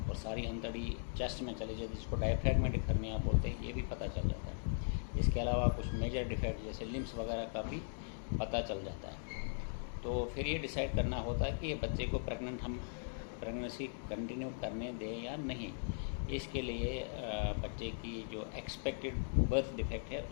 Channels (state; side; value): silent; right; digital silence